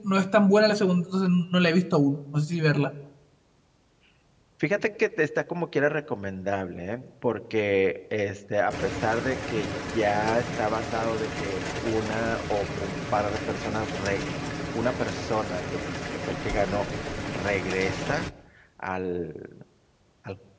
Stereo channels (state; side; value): identical; both; correlation 1.00